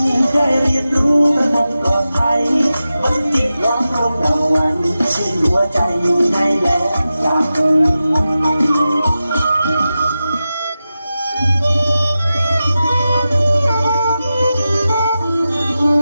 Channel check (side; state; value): both; inverted; correlation -0.93